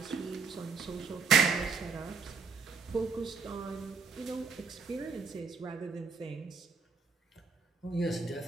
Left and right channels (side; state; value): left; quieter; 5.0 dB